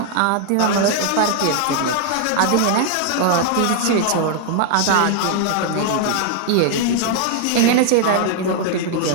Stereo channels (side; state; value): both; different; correlation 0.00